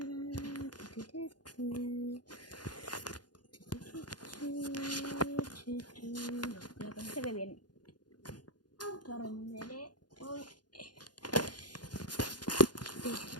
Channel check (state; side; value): late; right; 0.70 ms